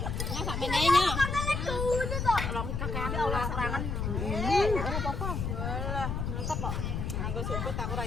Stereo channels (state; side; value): noise; left; rumble, 2 dB below the sound